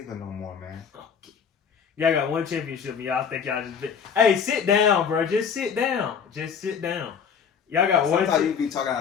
no more, man. Okay. Y'all got one championship, and y'all think y'all just. Hey, sit down, bro. Just sit down. Just sit down. Y'all got one. Sometimes you be talking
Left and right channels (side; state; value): right; quieter; 7.0 dB